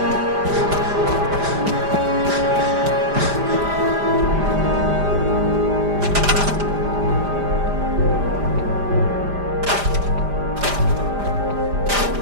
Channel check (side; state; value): left; late; 5.0 ms